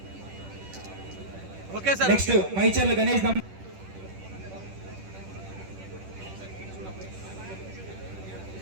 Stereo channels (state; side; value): late; left; 10 ms